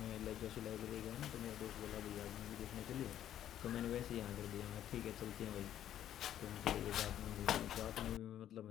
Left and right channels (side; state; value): right; quieter; 11.1 dB